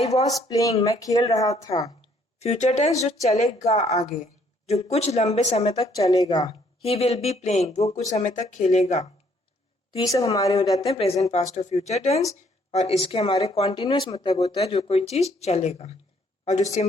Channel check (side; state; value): both; normal; correlation 0.66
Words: वॉज प्लेइंग, मैं खेल रहा था। फ्यूचर टेंस जो चलेगा आगे, जो कुछ लंबे समय तक चलेगा, ही विल बी प्लेइंग, वो कुछ समय तक खेलेगा। तो ये सब हमारे हो जाते हैं प्रेजेंट, पास्ट और फ्यूचर टेंस। और इसके हमारे कॉन्टिन्यूअस मतलब होता है जो कोई चीज चलेगा, और जो